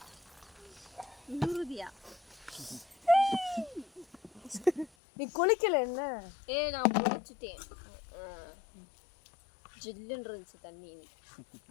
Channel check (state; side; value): drops out; right; at 4.9 s